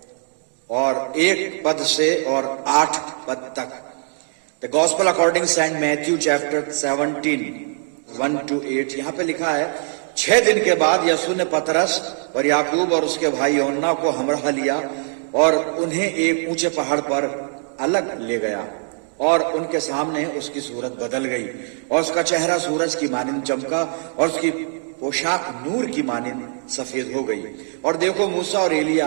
और 1 पद से और 8 पद तक। The gospel according Saint Matthew chapter 17 1 to 8। यहां पे लिखा है, 6 दिन के बाद यीशु ने पतरस और याकूब और उसके भाई यूहन्ना को हमराह लिया और उन्हें एक ऊंचे पहाड़ पर अलग ले गया और उनके सामने उसकी सूरत बदल गई और उसका चेहरा सूरज की मानिंद चमका और उसकी पोशाक नूर की मानिंद सफेद हो गई। और देखो, मूसा और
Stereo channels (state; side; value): silent; left; 63 dB below the other